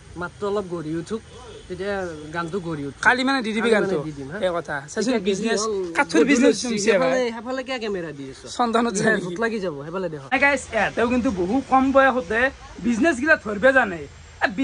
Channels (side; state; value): both; identical; correlation 1.00